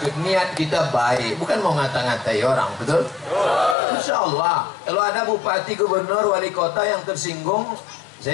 niat kita baik, bukan mau ngata-ngatai orang, betul? Insya Allah, kalau ada bupati, gubernur, wali kota yang tersinggung,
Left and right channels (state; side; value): drops out; right; at 3.8 s